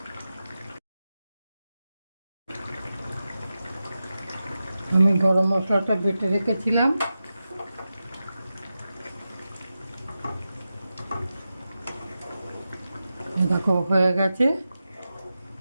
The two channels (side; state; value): both; inverted; correlation -0.91